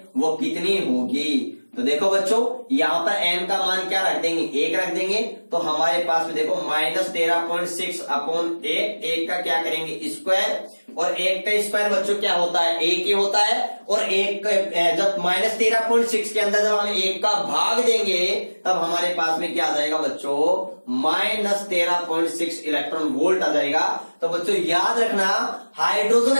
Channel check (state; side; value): inverted; both; correlation -1.00